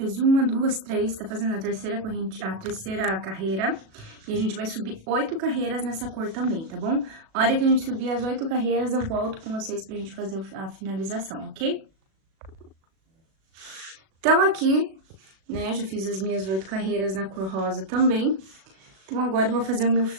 1, 2, 3, tá fazendo a terceira corrente, a terceira carreira. E a gente vai subir 8 carreiras nessa cor também, tá bom? A hora que a gente subir as 8 carreiras, eu volto com vocês pra gente fazer a finalização, ok? Então, aqui, né, já fiz as minhas 8 carreiras na cor rosa também. Então, agora eu vou fazer o meu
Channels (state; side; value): late; left; 37 ms